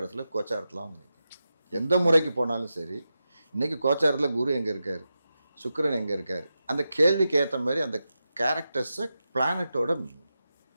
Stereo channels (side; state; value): both; inverted; correlation -0.90